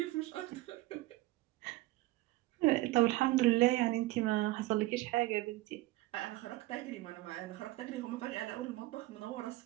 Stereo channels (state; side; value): quieter; left; 18.8 dB